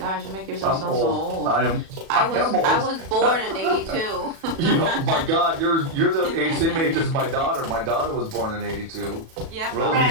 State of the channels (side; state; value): left; late; 37 ms